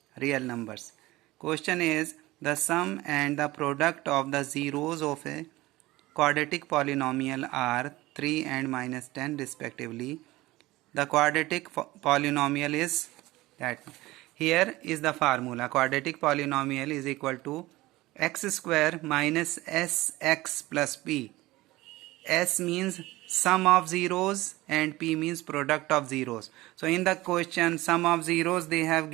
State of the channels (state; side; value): quieter; left; 18.8 dB